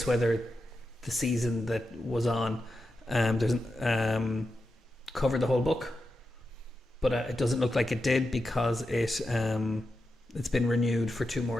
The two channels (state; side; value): normal; both; correlation 0.89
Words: whether the season that was on covered the whole book, but it doesn't look like it did because it's been renewed for 2